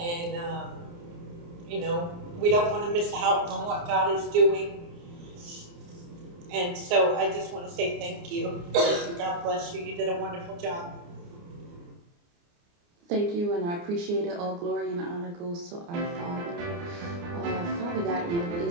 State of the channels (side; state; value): left; late; 29 ms